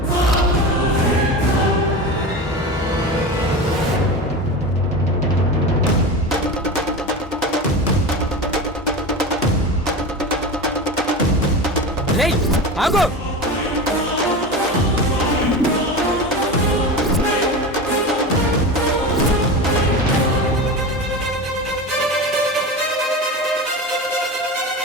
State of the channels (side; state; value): both; normal; correlation 0.26